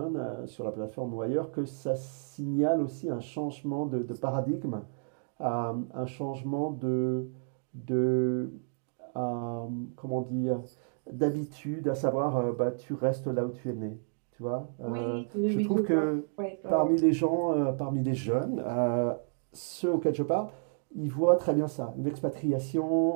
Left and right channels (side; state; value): left; silent; digital silence